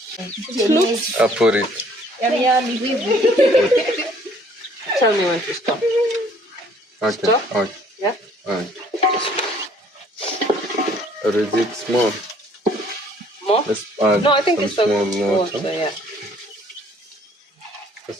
I put it. Tell me when to stop. Okay. Stop? Okay. Yeah? Alright. Or is it small? More? Let's add No, I think some it's small okay. water. Yeah.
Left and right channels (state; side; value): normal; both; correlation 0.59